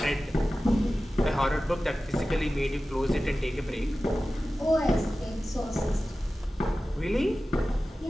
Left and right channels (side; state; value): both; normal; correlation 0.95